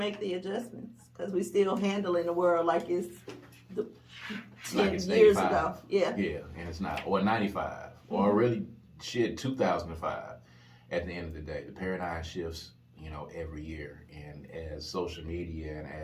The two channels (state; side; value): identical; both; correlation 1.00